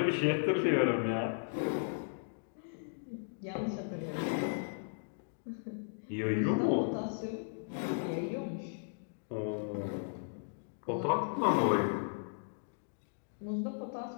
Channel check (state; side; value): silent; right; digital silence